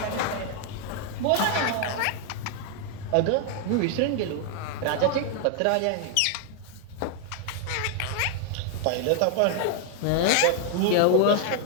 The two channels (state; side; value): different; both; correlation 0.00